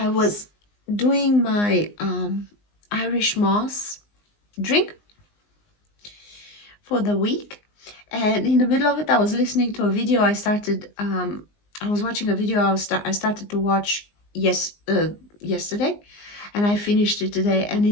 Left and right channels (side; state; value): right; late; 19 ms